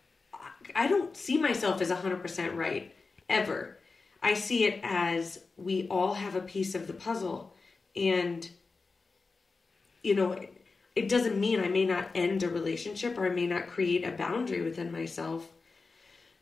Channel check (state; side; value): quieter; right; 4.1 dB